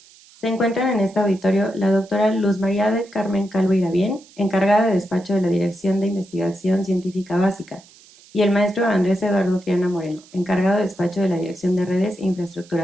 Se encuentran en este auditorio la doctora Luz María del Carmen Calvo Irabién, encargada de despacho de la Dirección de Investigación Científica Básica, y el maestro Andrés Eduardo Triana Moreno, encargado de despacho de la Dirección de Redes e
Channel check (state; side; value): noise; right; hiss, 25 dB below the sound